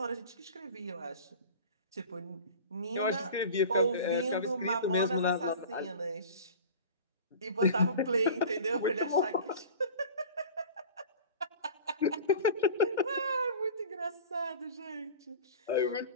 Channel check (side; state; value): both; inverted; correlation -0.38